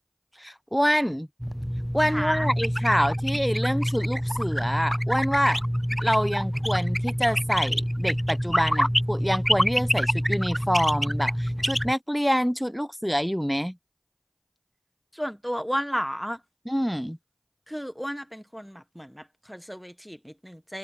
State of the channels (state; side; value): identical; both; correlation 1.00